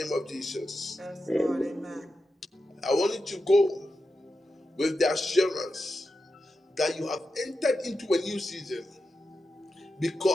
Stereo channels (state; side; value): normal; both; correlation 0.89